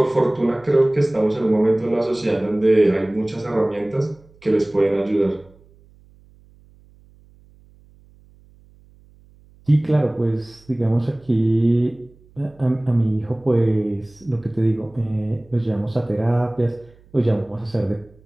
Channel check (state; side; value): noise; right; hum, 28 dB below the sound